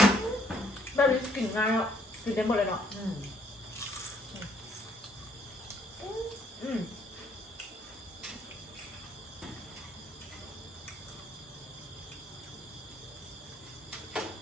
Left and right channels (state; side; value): normal; both; correlation 0.66